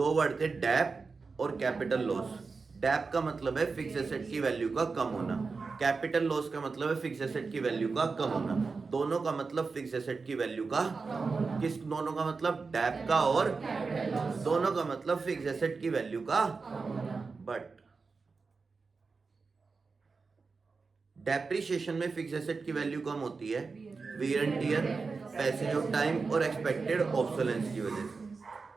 वर्ड थे, डेप और कैपिटल लॉस। डेप का मतलब है फिक्स एसेट की वैल्यू का कम होना, कैपिटल लॉस का मतलब है फिक्स एसेट की वैल्यू का कम होना। दोनों का मतलब फिक्स एसेट की वैल्यू का, किस दोनों का मतलब? डेप का और दोनों का मतलब फिक्स एसेट की वैल्यू का। बट डेप्रिसिएशन में फिक्स एसेट की वैल्यू कम होती है, wear and tear, passage of time और एक्सपेक्टेड ऑब्सोलेंस की वजह से।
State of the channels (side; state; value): left; quieter; 4.5 dB